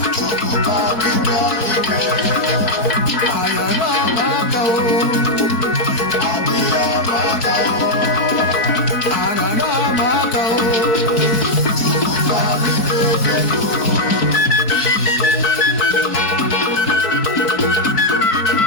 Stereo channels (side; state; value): right; late; 4.1 ms